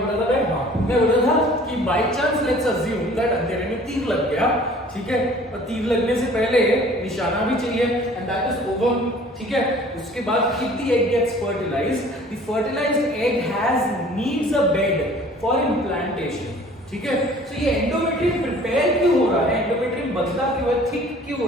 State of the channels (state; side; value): normal; both; correlation 0.50